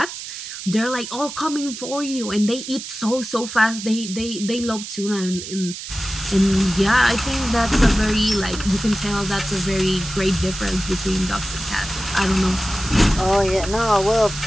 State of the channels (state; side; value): noise; right; hiss, 9 dB below the sound